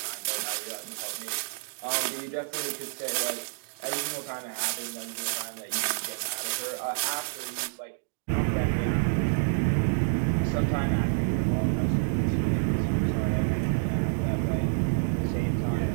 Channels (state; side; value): silent; left; digital silence